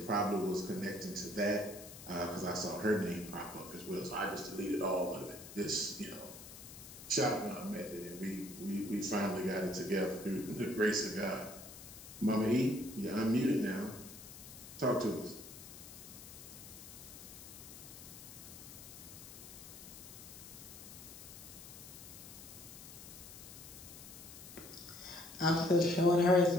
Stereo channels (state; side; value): noise; left; hiss, 14 dB below the sound